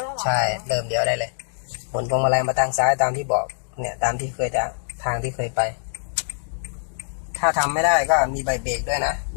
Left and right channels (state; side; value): silent; right; digital silence